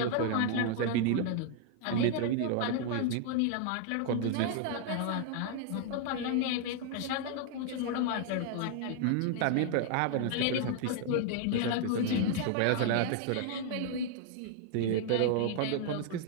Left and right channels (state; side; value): different; both; correlation 0.00